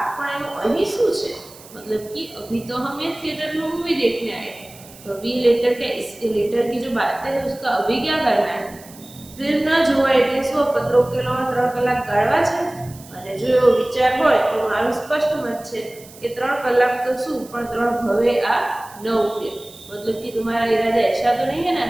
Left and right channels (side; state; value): right; noise; hiss, 21 dB below the sound